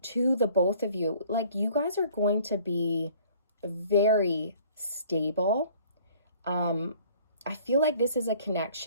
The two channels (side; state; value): both; inverted; correlation -0.55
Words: to the both of you. Like you guys are going to be very stable. I feel like this is a